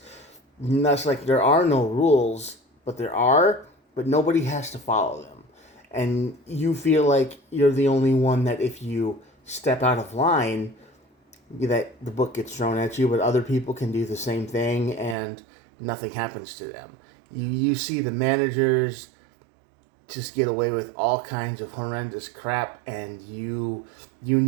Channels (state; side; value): drops out; left; at 15.2 s